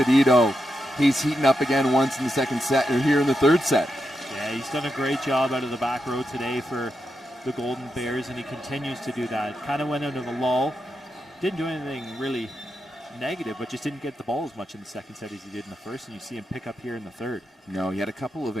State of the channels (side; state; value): both; normal; correlation 0.86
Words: He's heating up again once in the second set, or here in the third set. Yeah, he's done a great job out of the back row today for the Golden Bears, and he continues to do that. Kind of went out of a lull. Didn't do anything really negative, but just didn't get the ball as much in the second set as he did in the first, and you see him pick up here in the third. No, he had a couple of